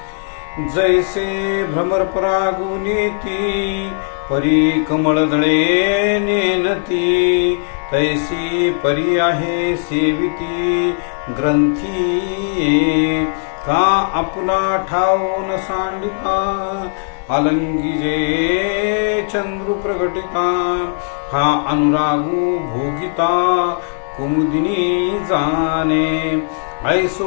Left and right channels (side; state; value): right; silent; 60 dB below the other